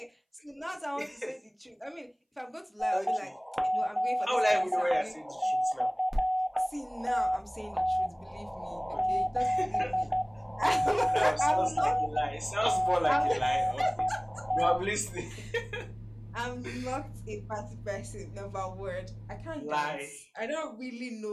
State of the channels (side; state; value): both; identical; correlation 1.00